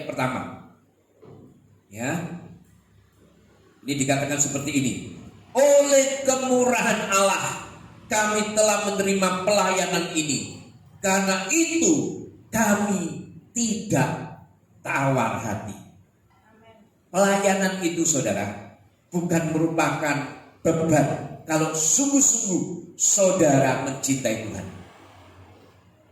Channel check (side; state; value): both; identical; correlation 1.00